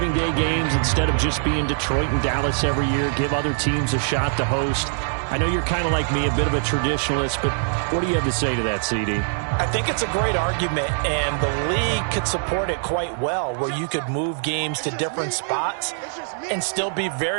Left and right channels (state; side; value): silent; left; 64 dB below the other